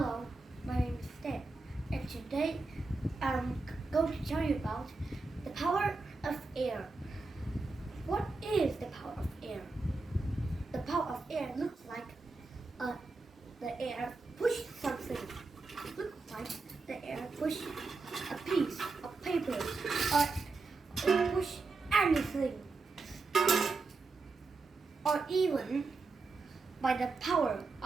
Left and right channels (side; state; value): left; quieter; 3.7 dB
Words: my name is Stan, and today I'm going to tell you about the power of air. What is the power of air? The power of air looks like the air pushed something. Looks like the air pushed a piece of paper or push anything. Or even by the power